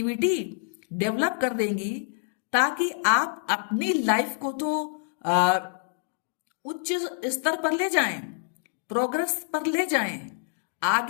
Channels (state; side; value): silent; right; digital silence